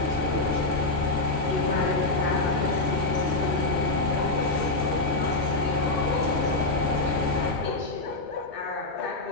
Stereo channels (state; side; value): quieter; right; 3.1 dB